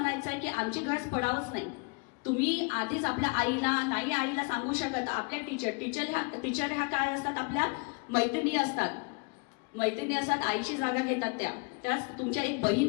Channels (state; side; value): quieter; right; 32.9 dB